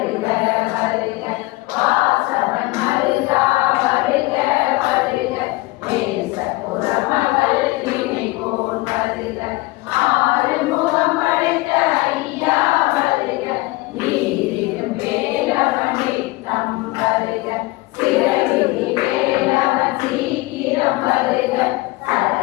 வருக வாசவன் மருகா வருக வருக நேச புறமகள் நினைவோன் வருக ஆறுமுகம் படைத்த ஐயா வருக நீரிடும் வேலவன் நித்தம் வருக சிறகிரி வேலவன் சீக்கிரம் வருக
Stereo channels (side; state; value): right; quieter; 21.4 dB